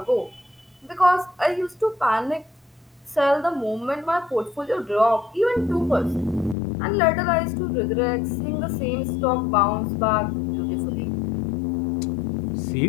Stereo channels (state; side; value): drops out; right; at 6.6 s